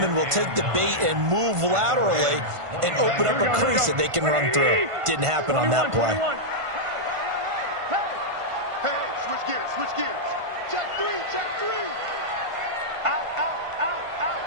will take the bait and move laterally and open up a crease that they can run through. Didn't happen on that play. Hey, switch gears. Check three. Out.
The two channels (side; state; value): left; late; 1.5 ms